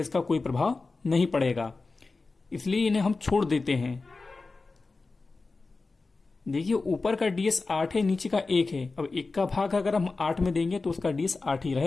का कोई प्रभाव नहीं पड़ेगा, इसलिए इन्हें हम छोड़ देते हैं। देखिए ऊपर का डीएस 8 है, नीचे का 1 है। अब 1 का भाग अगर हम 8 में देंगे तो उसका डीएस 8 ही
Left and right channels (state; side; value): quieter; right; 3.8 dB